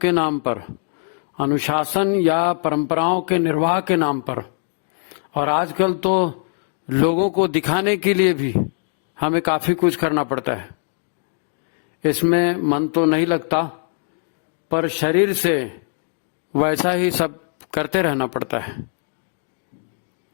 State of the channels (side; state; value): right; silent; digital silence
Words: नाम पर, अनुशासन या परंपराओं के निर्वाह के नाम पर, और आजकल तो लोगों को दिखाने के लिए भी हमें काफी कुछ करना पड़ता है। इसमें मन तो नहीं लगता, पर शरीर से वैसा ही सब करते रहना पड़ता है।